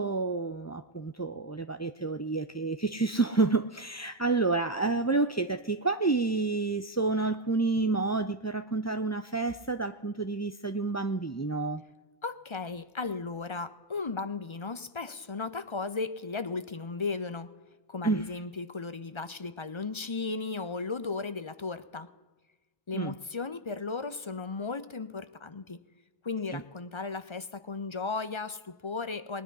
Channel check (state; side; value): late; right; 1.3 ms